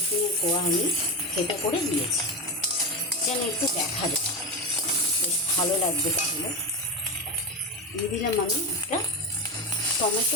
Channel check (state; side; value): normal; both; correlation 0.18